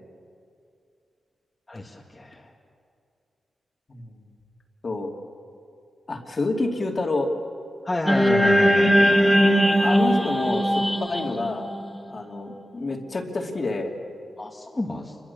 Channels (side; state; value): both; normal; correlation 0.94